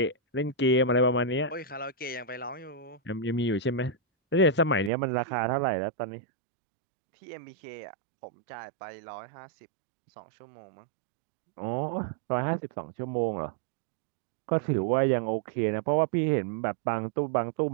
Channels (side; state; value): left; drops out; at 4.9 s